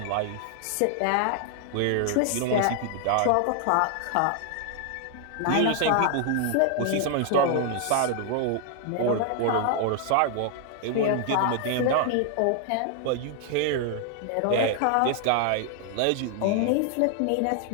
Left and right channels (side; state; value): both; different; correlation 0.00